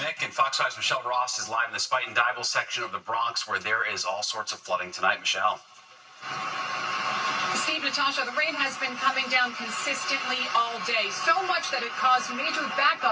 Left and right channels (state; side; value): identical; both; correlation 1.00